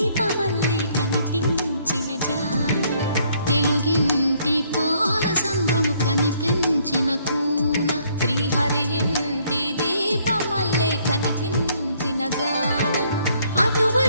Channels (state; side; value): inverted; both; correlation -0.66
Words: కనిపించిన జాన. తెలుగింటి పాల సంద్రము కనిపించిన కూన శ్రీహరి ఇంటి దీపమల్లే కనిపించిన జాన.